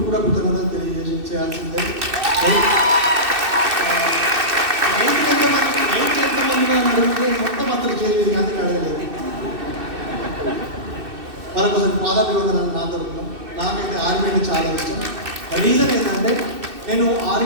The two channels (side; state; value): left; late; 2.6 ms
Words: కూడా కృతజ్ఞతలు తెలియజేయాల్సిందే. అడిగితే మొత్తం అతను చేయలేదు, అందుకే అడగలేదు. మరొకసారి పాదాభివందనాలు నా తరఫున. నాకైతే ఆర్మీ అంటే చాలా ఇష్టం. రీజన్ ఏంటంటే నేను